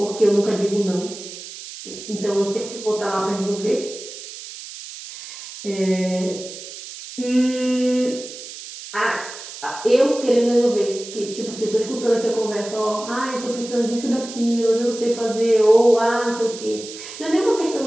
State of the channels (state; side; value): noise; right; hiss, 12 dB below the sound